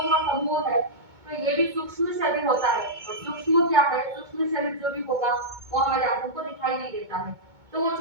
का समूह है, तो ये भी सूक्ष्म शरीर होता है, और सूक्ष्म क्या है, सूक्ष्म शरीर जो भी होगा वो हमारे आंखों को दिखाई नहीं देता है, तो वो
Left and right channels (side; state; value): left; late; 2.2 ms